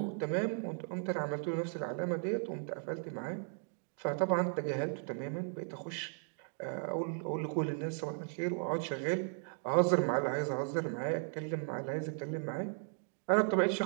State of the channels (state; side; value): silent; left; 54 dB below the other